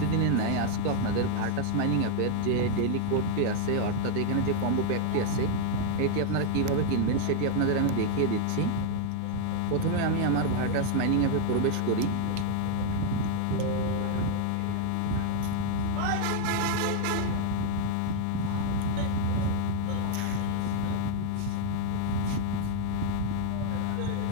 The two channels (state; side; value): different; both; correlation 0.00